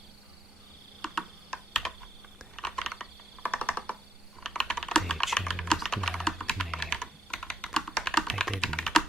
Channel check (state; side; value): normal; both; correlation 0.72